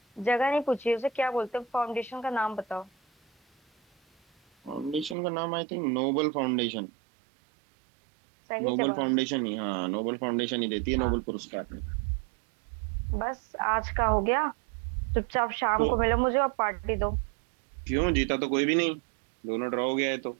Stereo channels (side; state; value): left; drops out; at 5.2 s